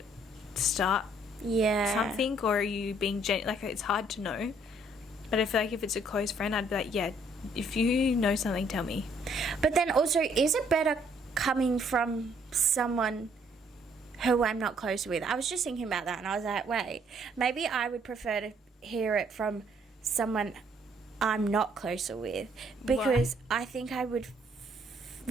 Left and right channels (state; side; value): normal; both; correlation 0.65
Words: start Yeah. something, or are you being like? It's hard to know. But I feel like if it's a close friend, I'd be like, yeah, if you know something, tell me. But then also, is it better coming from someone who I'm not close with? I was just thinking about that and I was like, wait, maybe I would prefer to hear it from someone I'm not closer with, because I think I would,